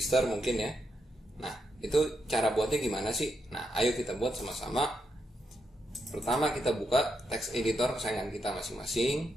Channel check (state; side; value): normal; both; correlation 0.82